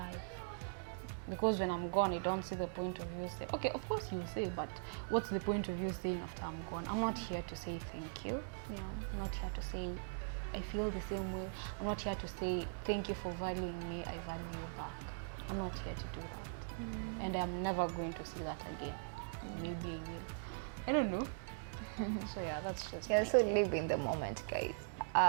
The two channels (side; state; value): left; silent; 51 dB below the other